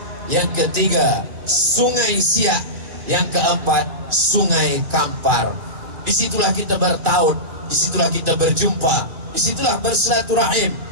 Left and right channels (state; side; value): late; left; 2.5 ms